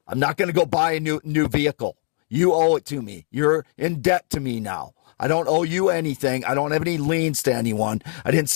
I'm not going to go buy a new vehicle. You owe it to me. You're in debt to me now. I don't owe you anything. I don't have any liens to anyone. I didn't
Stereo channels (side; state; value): right; silent; 61 dB below the other